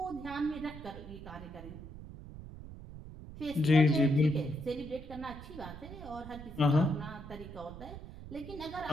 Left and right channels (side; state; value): right; noise; rumble, 13 dB below the sound